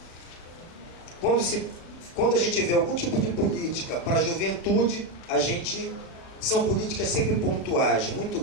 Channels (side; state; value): right; late; 36 ms